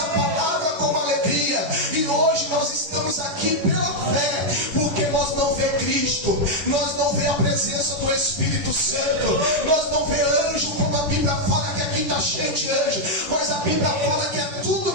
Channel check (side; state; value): left; late; 10 ms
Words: palavra com alegria, e hoje nós estamos aqui pela fé, porque nós não vemos Cristo, nós não vemos a presença do Espírito Santo, nós não vemos anjo, como a Bíblia fala que aqui está cheio de anjo, mas a Bíblia fala que é tudo